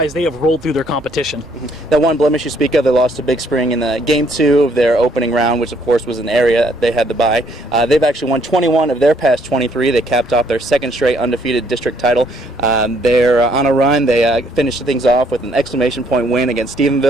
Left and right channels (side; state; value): both; normal; correlation 0.67